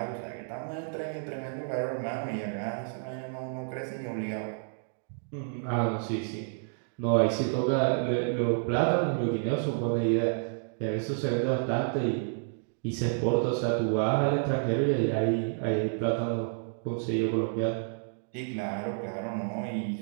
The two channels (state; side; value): silent; left; digital silence